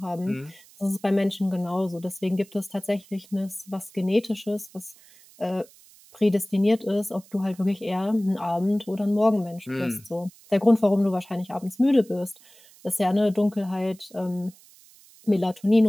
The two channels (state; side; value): noise; right; hiss, 25 dB below the sound